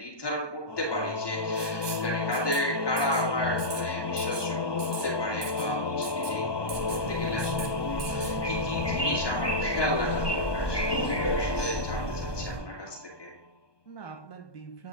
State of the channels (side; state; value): right; late; 1.2 ms